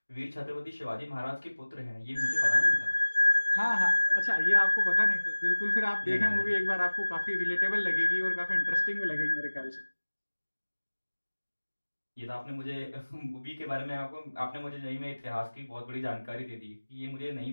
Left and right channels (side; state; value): both; inverted; correlation -1.00